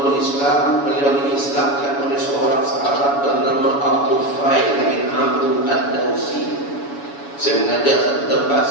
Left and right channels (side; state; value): right; late; 7.1 ms